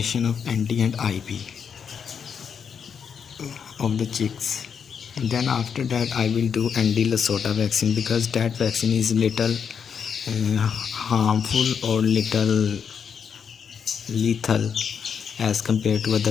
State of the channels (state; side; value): quieter; right; 7.0 dB